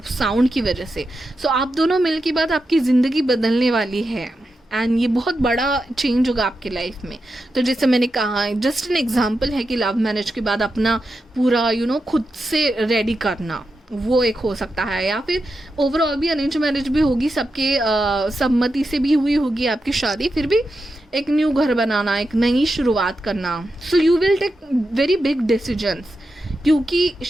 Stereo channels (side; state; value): both; normal; correlation 0.88